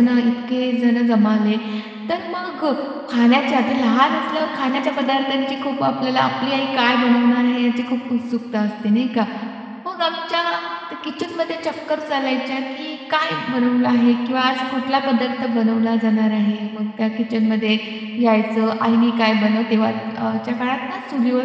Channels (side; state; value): both; identical; correlation 1.00